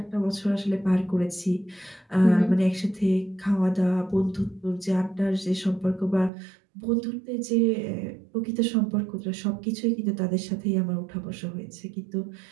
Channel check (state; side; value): drops out; left; at 6.3 s